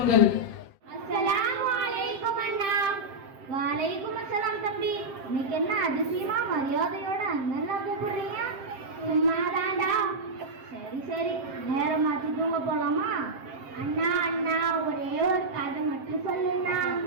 அஸ்ஸலாமு அலைக்கும் அண்ணா. வலைக்கும் அஸ்ஸலாம் தம்பி. இன்னைக்கு என்ன அதிசயமா மரியாதையோட அண்ணன் கூப்பிடுறீங்க? சும்மாதான்டா. சரி சரி, நேரம் மாத்தி தூங்க போலாமா? அண்ணா அண்ணா, ஒரே ஒரு கதை மட்டும் சொல்லுண்ணா.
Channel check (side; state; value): left; late; 7.6 ms